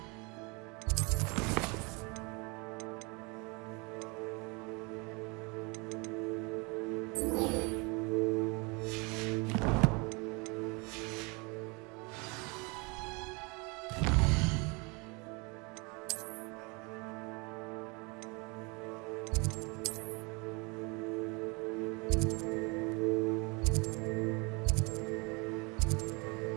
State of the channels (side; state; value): left; quieter; 29.3 dB